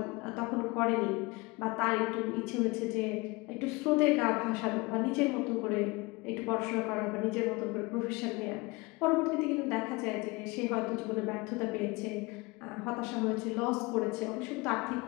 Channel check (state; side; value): quieter; right; 25.0 dB